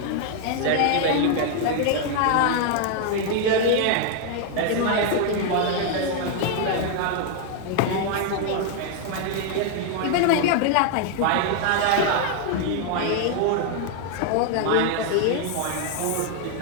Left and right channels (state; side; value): different; both; correlation 0.00